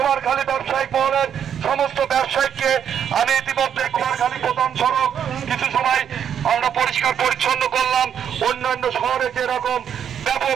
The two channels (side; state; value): left; quieter; 8.7 dB